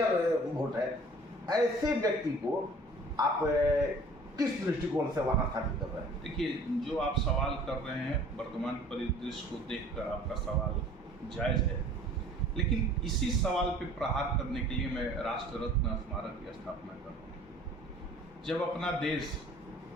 वोट है। ऐसे व्यक्ति को आप किस दृष्टिकोण से वहां स्थापित कर रहे हैं? देखिए, जो आप सवाल कर रहे हैं वर्तमान परिदृश्य को देखकर आपका सवाल जायज है, लेकिन इसी सवाल पे प्रहार करने के लिए मैं राष्ट्र रत्न स्मारक की स्थापना कर रहा हूँ। जब अपना देश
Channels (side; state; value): both; normal; correlation 0.49